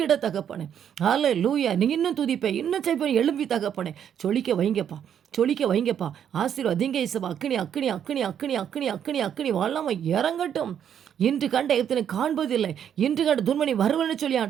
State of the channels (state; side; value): quieter; left; 9.0 dB